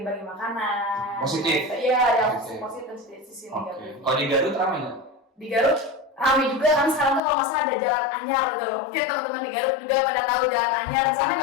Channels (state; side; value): drops out; right; at 7.2 s